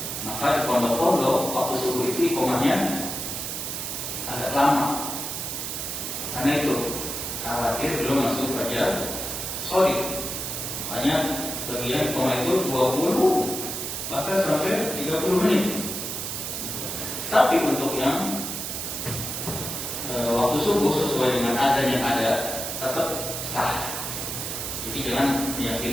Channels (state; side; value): noise; right; hiss, 4 dB below the sound